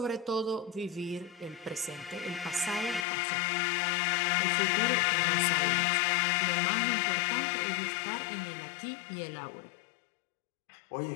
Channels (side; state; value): right; drops out; at 3.1 s